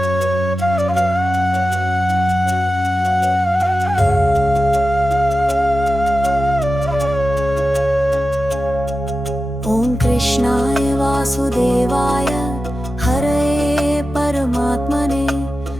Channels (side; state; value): both; normal; correlation 0.93